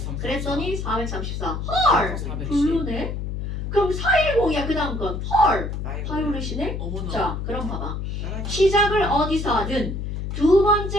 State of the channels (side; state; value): left; noise; hum, 4 dB below the sound